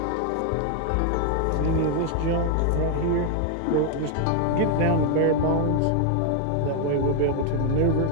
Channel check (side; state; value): both; different; correlation 0.00